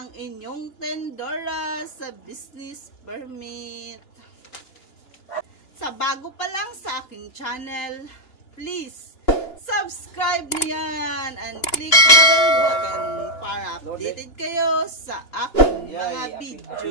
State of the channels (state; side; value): late; right; 2.9 ms